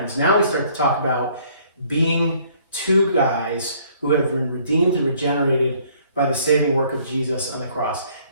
Now we start to talk about being two guys who have been redeemed and regenerated by the saving work of Jesus on the cross.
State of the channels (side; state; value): both; inverted; correlation -0.61